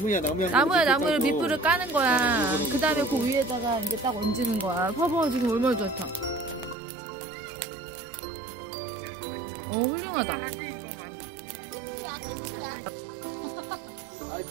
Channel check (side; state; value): left; drops out; at 6.8 s